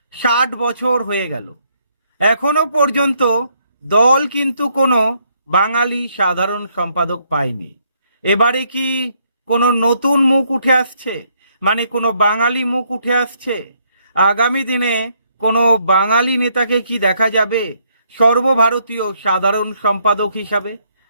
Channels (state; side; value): inverted; both; correlation -0.71